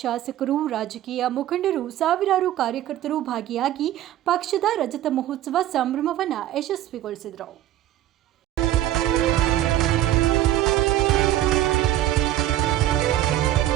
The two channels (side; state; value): left; quieter; 13.1 dB